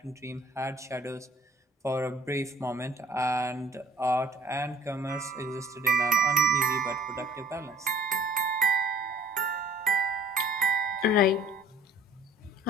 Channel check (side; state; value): both; normal; correlation 0.53